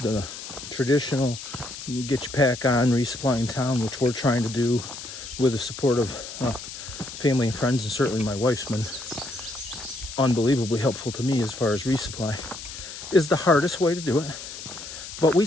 traditional get your pack on, resupply in town, which we're trying to do with the support of family and friends, and certainly my wife's been unbelievably helpful to me as far as resupply, is the hardest way to do it. But we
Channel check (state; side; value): noise; left; hiss, 11 dB below the sound